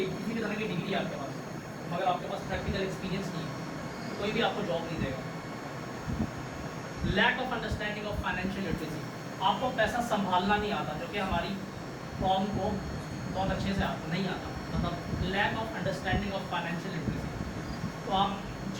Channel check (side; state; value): both; identical; correlation 1.00